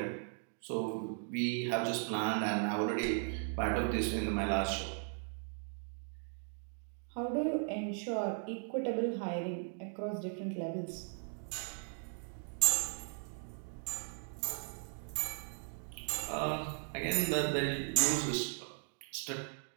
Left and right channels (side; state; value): left; silent; 53 dB below the other